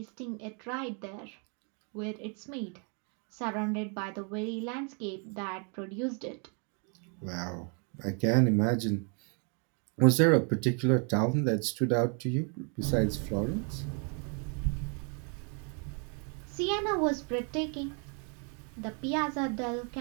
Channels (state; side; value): quieter; left; 38.4 dB